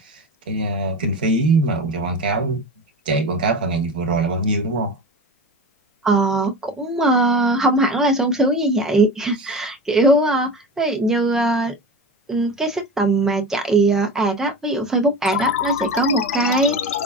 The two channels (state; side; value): normal; both; correlation 0.29